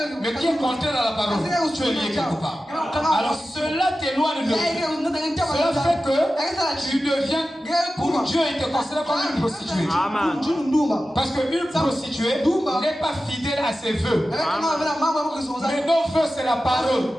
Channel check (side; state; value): both; normal; correlation 0.94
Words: Mais qui est contraire à la parole, tu es lié quelque part. Alors cela t'éloigne de Dieu. Cela fait que tu deviens, pour Dieu, il te considère comme une prostituée. Parce qu'une prostituée n'est pas fidèle à ses vœux. Mais nos vœux, c'est la parole.